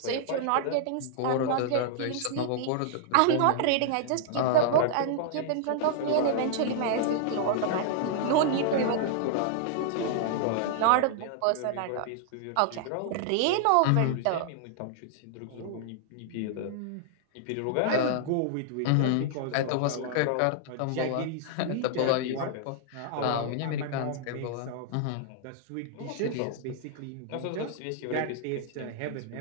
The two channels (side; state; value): both; different; correlation -0.01